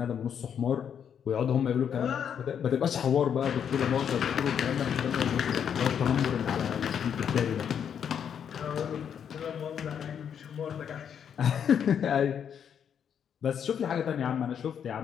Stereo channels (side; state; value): right; quieter; 8.2 dB